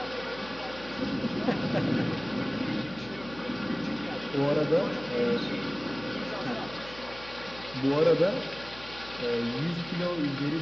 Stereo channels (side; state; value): left; noise; hum, 17 dB below the sound